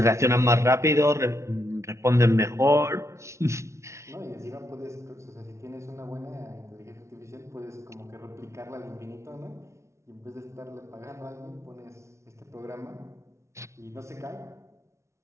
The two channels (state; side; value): late; left; 0.14 ms